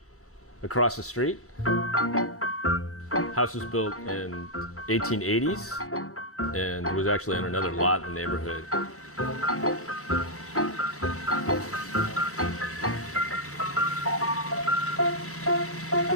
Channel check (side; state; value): left; late; 2.3 ms